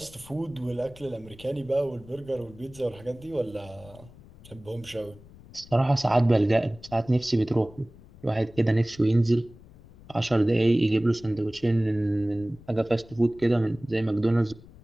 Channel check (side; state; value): left; noise; rumble, 22 dB below the sound